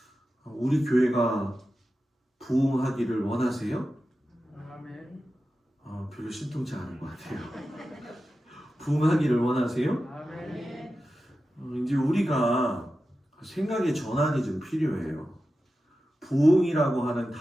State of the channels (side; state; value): both; normal; correlation 0.92